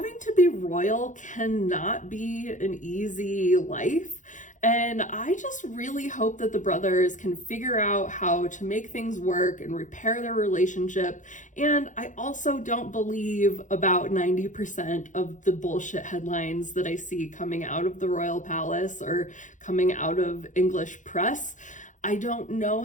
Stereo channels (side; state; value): right; late; 0.36 ms